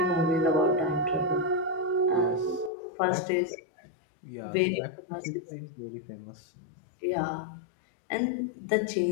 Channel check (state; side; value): drops out; right; at 2.7 s